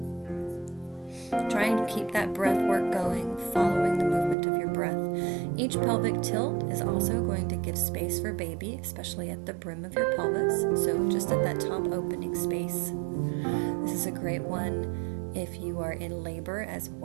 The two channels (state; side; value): drops out; left; at 4.4 s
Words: Trying to keep that breath work going, following the movement of your breath. Each pelvic tilt is also going to give space for baby, especially at the brim of your pelvis, so just at that top opening space. This is a great one if you are in labor as